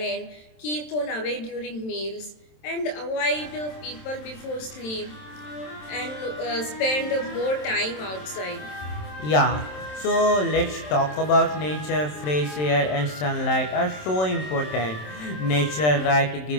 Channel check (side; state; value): right; late; 27 ms